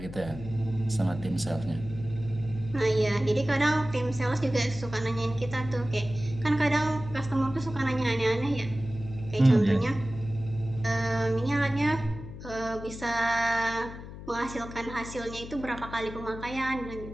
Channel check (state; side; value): noise; left; hum, 12 dB below the sound